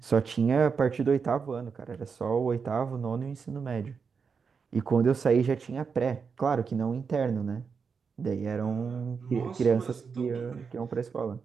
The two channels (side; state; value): left; quieter; 5.7 dB